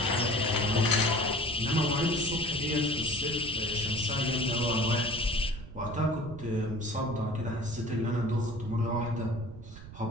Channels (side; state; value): right; noise; rumble, 14 dB below the sound